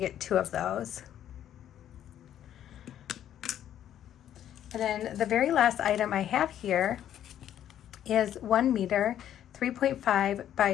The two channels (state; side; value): quieter; right; 10.8 dB